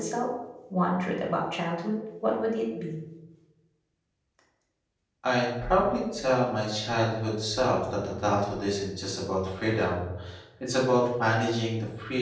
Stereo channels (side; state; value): both; identical; correlation 1.00